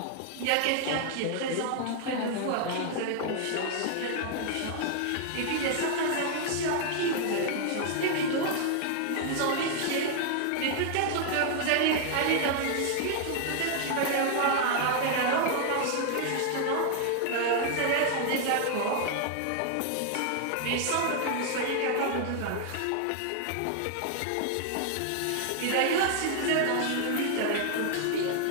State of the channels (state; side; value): different; both; correlation 0.00